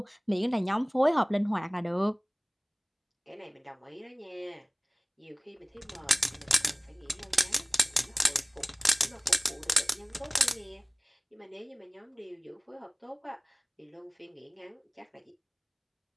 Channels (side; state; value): both; identical; correlation 1.00